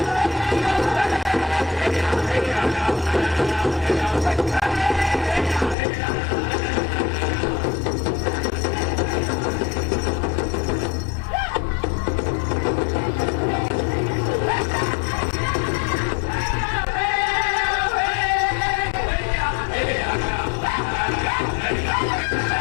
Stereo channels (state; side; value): drops out; right; at 5.8 s